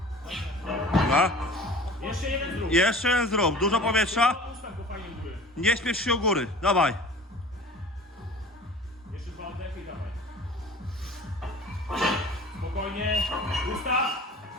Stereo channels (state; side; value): normal; both; correlation 0.43